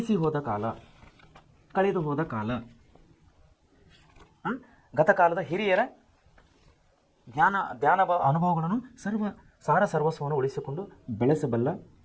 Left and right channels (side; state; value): both; identical; correlation 1.00